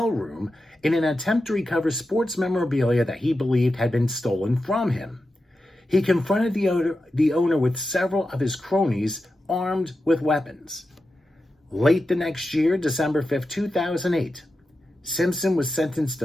room in an attempt to recover sports memorabilia that he believed had been stolen from him. He confronted the owner with several of his cronies armed with weapons. Late the next year, December 5th, 2008, Simpson was sentenced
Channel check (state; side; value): normal; both; correlation 0.90